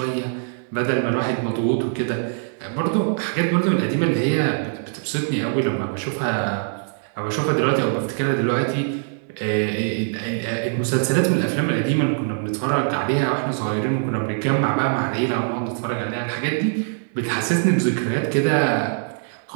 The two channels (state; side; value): silent; left; 64 dB below the other